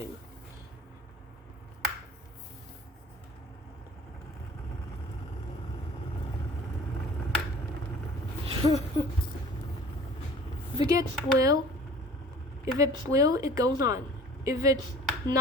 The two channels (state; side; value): normal; both; correlation 0.46